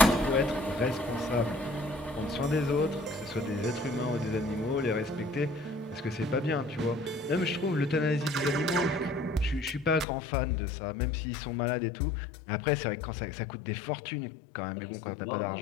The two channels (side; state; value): right; drops out; at 10.1 s